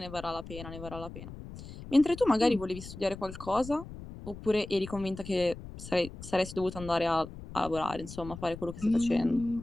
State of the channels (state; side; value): noise; left; rumble, 13 dB below the sound